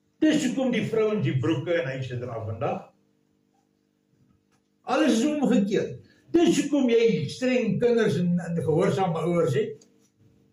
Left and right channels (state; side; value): identical; both; correlation 1.00